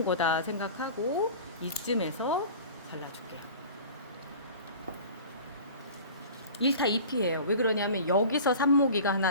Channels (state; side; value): inverted; both; correlation -0.40